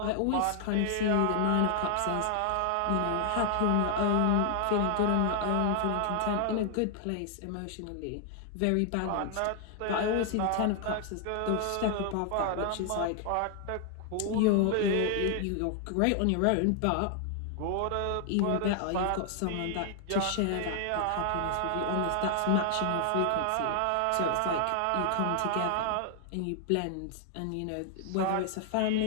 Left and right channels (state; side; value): different; both; correlation 0.00